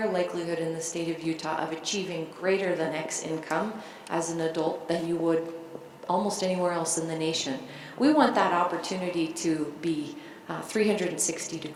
likelihood in the state of Utah of achieving greater than X income as an adult than you would almost anywhere else in the nation. We want that opportunity to be 360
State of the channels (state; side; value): identical; both; correlation 1.00